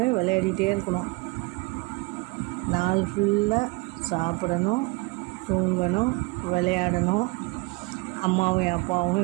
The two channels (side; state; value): left; quieter; 26.8 dB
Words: விளையாடிட்டே இருக்கணும். நாள் ஃபுல்லாக சாப்பிடணும், தூங்கணும், விளையாடணும். அம்மாவையும்